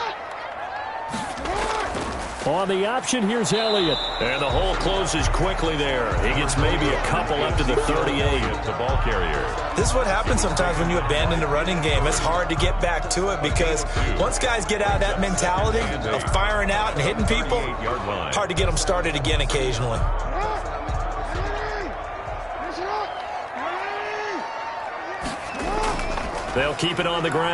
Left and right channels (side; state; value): both; identical; correlation 1.00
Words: On the option, here's Elliott. And the hole closes quickly there. He gets maybe a couple up to the 38. The ball carrier. This is what happens sometimes when you abandon the running game. It's hard to get back to it because once guys get out of that mentality of firing out and hitting people, hard to get them started again occasionally. They'll keep it on the